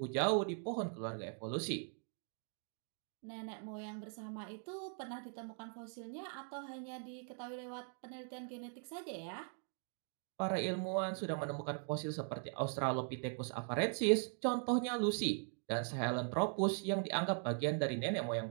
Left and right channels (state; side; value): silent; left; 51 dB below the other